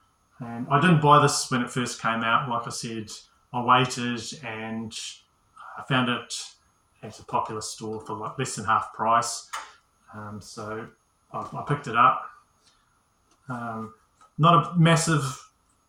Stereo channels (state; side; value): identical; both; correlation 1.00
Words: And I didn't buy this when it first came out. Like I said, I waited and I found it at a popular store for like less than half price. So I picked it up. Not a massive